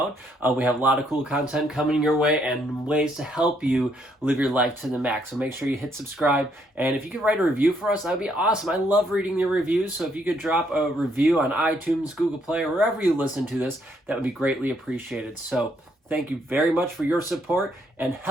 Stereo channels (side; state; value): both; normal; correlation 0.71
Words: We have a lot of cool content coming your way and ways to help you live your life to the max. So make sure you hit subscribe. And if you could write a review for us, that would be awesome. I love reading your reviews. So if you could drop a review on iTunes, Google Play, or wherever you listen to this, that would be greatly appreciated. So thank you very much for your support and